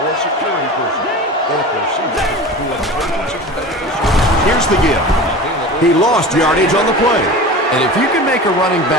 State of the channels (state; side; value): normal; both; correlation 0.34